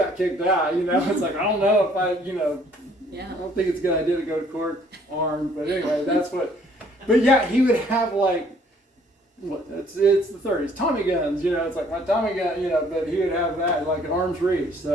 kicked out, you know. It's like, I don't know if I, you know, I don't think it's a good idea to go to court armed, but anyway, that's what. But yeah, he would have like, what? It's the 30s, Tommy guns, you know. It's like my Tommy gun, you know. But he would have that like an arm's reach.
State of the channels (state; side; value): normal; both; correlation 0.60